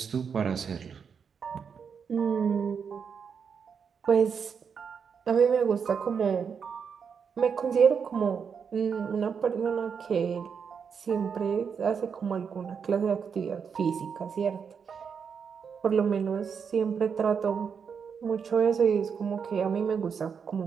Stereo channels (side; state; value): left; quieter; 6.5 dB